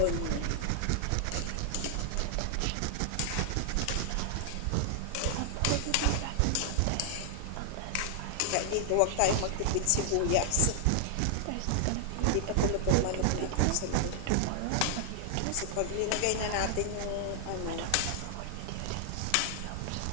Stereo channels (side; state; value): both; different; correlation 0.00